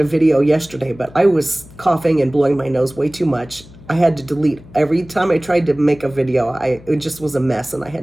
video yesterday, but I was coughing and blowing my nose way too much. I had to delete every time I tried to make a video. It just was a mess, and I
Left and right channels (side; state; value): left; noise; hum, 21 dB below the sound